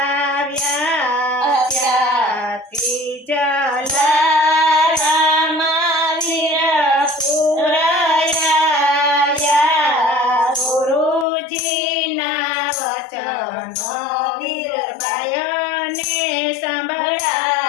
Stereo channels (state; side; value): drops out; right; at 11.2 s